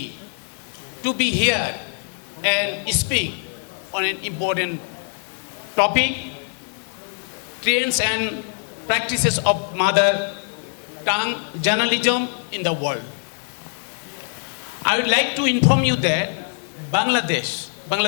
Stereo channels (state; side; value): silent; right; digital silence